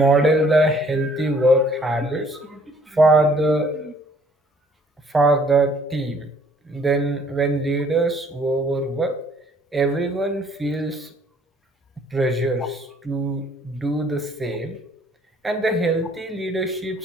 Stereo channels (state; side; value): normal; both; correlation 0.60